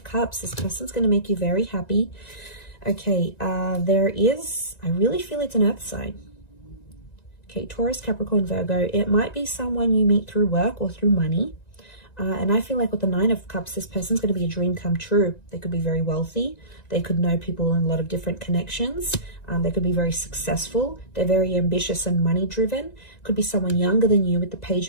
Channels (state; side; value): late; right; 1.9 ms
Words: Cups. This person's going to make you very happy. Okay, I really feel it's an earth sign. Okay, Taurus, Capricorn, Virgo. It might be someone you meet through work or through money. And I feel like with the 9 of Cups, this person's going to be a dream come true. They could be very wealthy. They could know people in a lot of different connections. They could be very successful. They're very ambitious and money driven. Could be someone younger than you with the